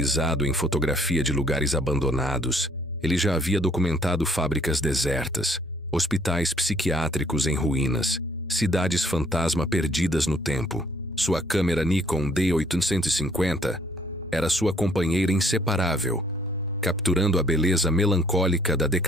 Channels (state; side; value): normal; both; correlation 0.62